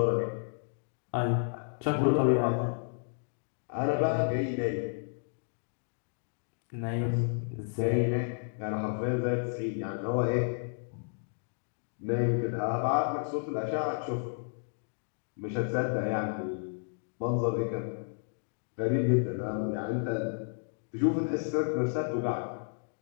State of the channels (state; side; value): silent; right; digital silence